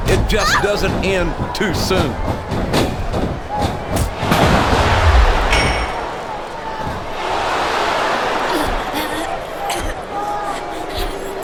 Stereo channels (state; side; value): identical; both; correlation 1.00